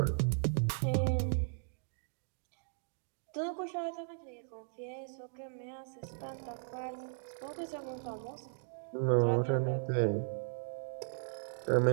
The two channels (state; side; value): silent; left; digital silence